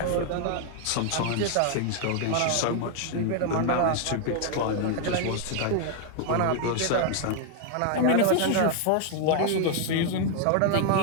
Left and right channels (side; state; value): both; different; correlation 0.00